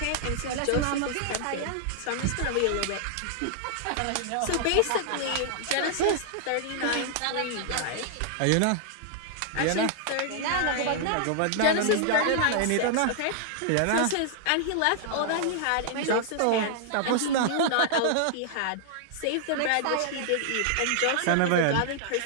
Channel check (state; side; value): different; both; correlation -0.01